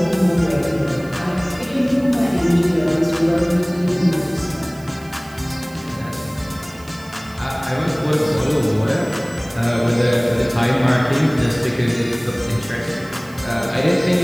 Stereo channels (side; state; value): right; noise; hiss, 24 dB below the sound